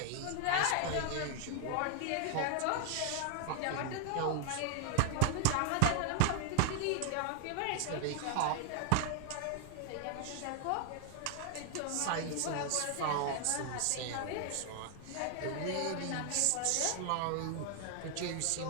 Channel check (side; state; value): both; different; correlation 0.00